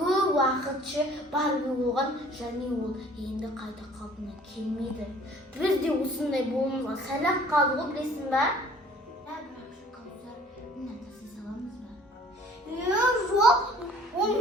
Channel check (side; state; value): both; normal; correlation 0.53